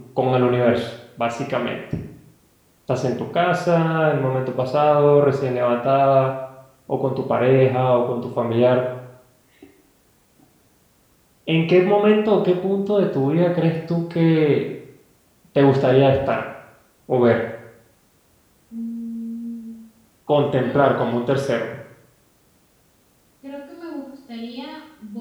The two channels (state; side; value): identical; both; correlation 1.00